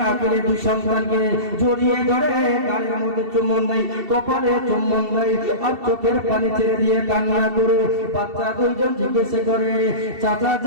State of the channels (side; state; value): left; late; 2.7 ms